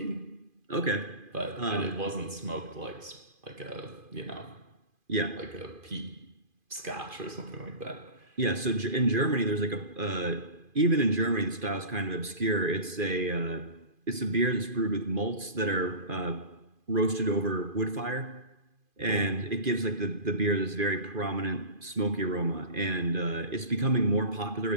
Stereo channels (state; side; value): late; left; 2.5 ms